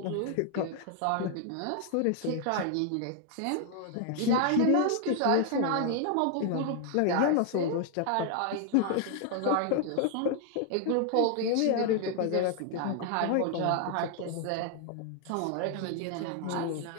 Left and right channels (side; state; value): both; different; correlation 0.00